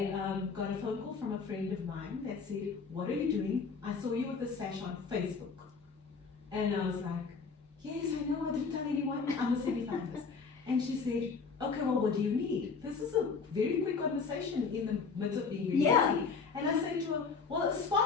got a phone call from a friend of mine that said, "What are you doing? I saw you with a sash on Facebook." And I was like, "Yes, I know, I didn't tell anyone, I'm a semi-finalist." And she said, "Okay, well, what do you need?" This is a very quick conversation in the midst of being really busy. And I said to her, "Well, a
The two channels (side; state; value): right; quieter; 5.1 dB